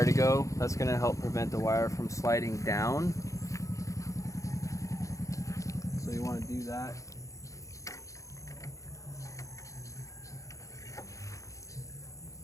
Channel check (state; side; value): late; right; 0.15 ms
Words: to go. That's going to help prevent the wire from sliding down. So you want to do that.